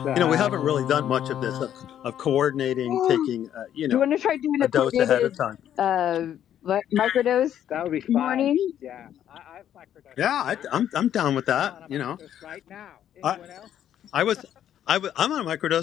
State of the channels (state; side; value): quieter; right; 10.5 dB